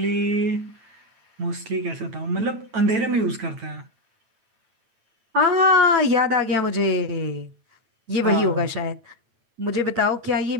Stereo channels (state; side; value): late; left; 9.0 ms